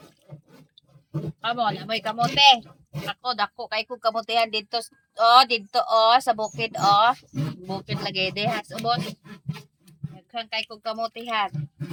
Kamo, namoy kamote. Dako, kay kong kamutihan dito, sa bukid, Bukid lagay de, has, ubos. Nagkang kay kong kamutihan.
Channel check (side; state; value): both; identical; correlation 1.00